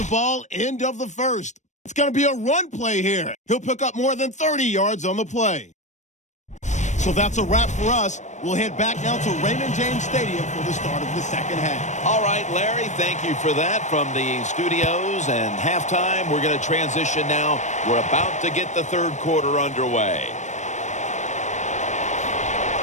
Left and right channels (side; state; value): right; late; 0.34 ms